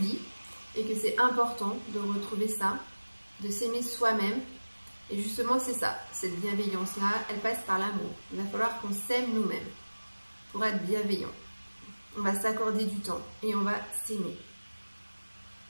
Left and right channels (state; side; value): inverted; both; correlation -1.00